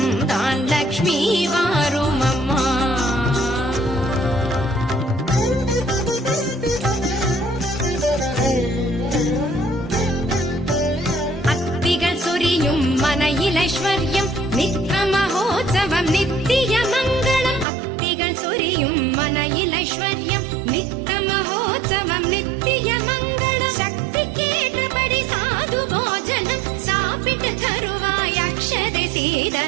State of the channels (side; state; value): left; drops out; at 17.7 s